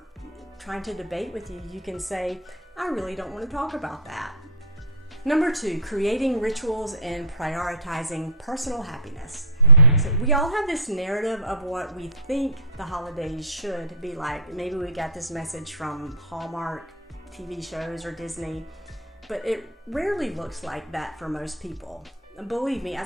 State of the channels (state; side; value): normal; both; correlation -0.10